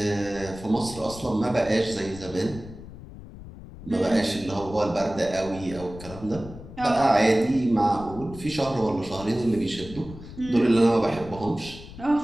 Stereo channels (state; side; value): noise; left; rumble, 15 dB below the sound